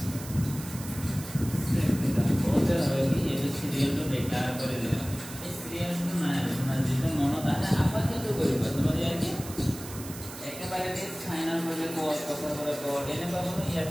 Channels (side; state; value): right; noise; hiss, 13 dB below the sound